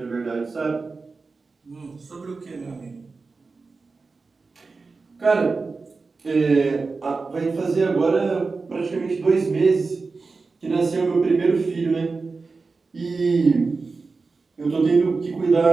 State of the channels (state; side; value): quieter; left; 4.2 dB